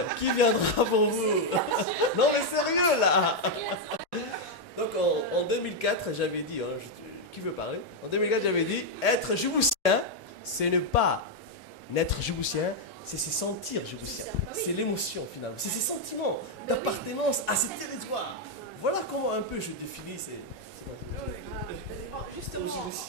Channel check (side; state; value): both; normal; correlation 0.00